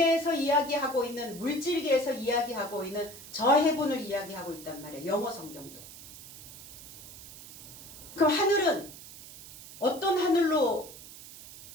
이야기하고 있는, 물질계에서 이야기하고 있는 저 heaven을 이야기하고 있단 말이에요. 영어 성경도. 그럼 하늘은 어떤 하늘로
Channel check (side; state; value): right; noise; hiss, 16 dB below the sound